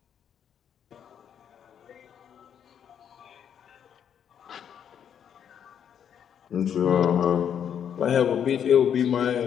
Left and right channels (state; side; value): quieter; right; 8.6 dB